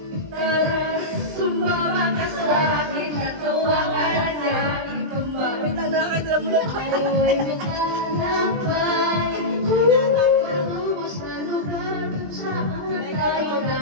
Tara, sumama ka sa akin, natuwa ka na niya, ikaw ba? Wait lang, nakakita mo lang tayo, ay maglalakbay, patubos na lugar, kung saan tayo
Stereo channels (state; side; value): late; left; 20 ms